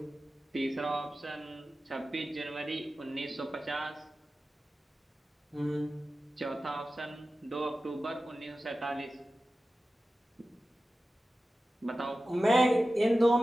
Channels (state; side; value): normal; both; correlation 0.94